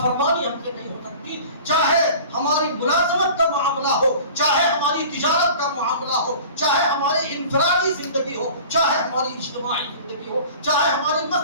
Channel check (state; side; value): inverted; both; correlation -0.42